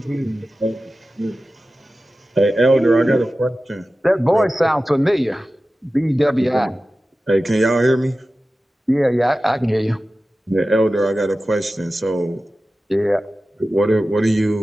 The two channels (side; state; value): both; normal; correlation 0.95